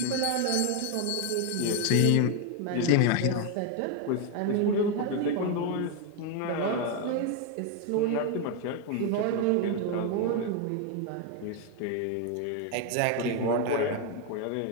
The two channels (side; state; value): both; different; correlation 0.01